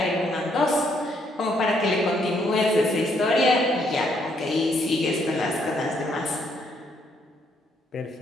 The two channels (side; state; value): both; normal; correlation 0.71